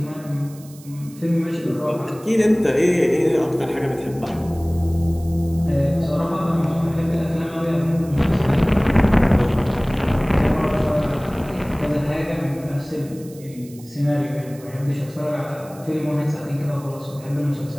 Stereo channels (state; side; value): noise; right; hiss, 22 dB below the sound